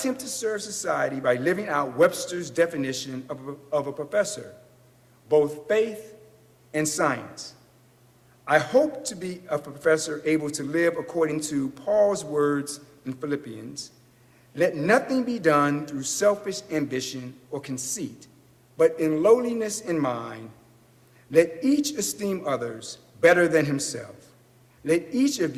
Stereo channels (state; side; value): identical; both; correlation 1.00